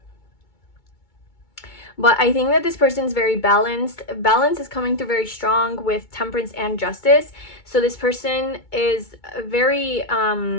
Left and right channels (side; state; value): right; late; 2.2 ms